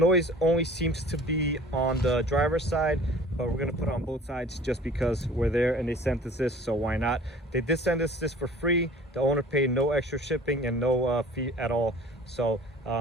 only seems to be on the driver's side, but we're gonna put it on both sides just because we're there and they sent us this, so why not? They did send us this for free. The owner paid no extra shipping and no fee at all. So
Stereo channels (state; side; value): normal; both; correlation 0.46